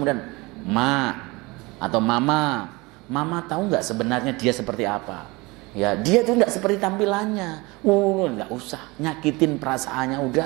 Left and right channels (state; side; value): quieter; left; 24.1 dB